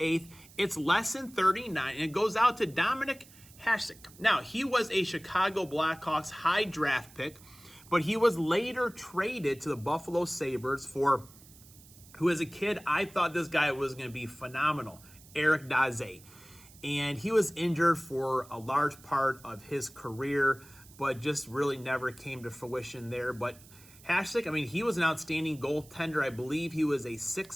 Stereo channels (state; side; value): noise; right; hiss, 23 dB below the sound